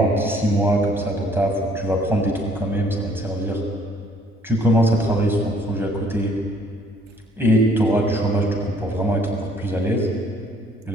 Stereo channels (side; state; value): both; normal; correlation 0.61